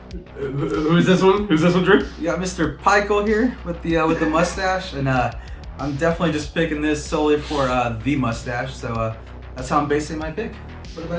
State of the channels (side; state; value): both; identical; correlation 1.00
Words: who's this one? Who's this one, Drew? You got Mr. Pikel here with the mustache, and I'm definitely just picking this solely for the mustache. So that's how I'm basing my pick. What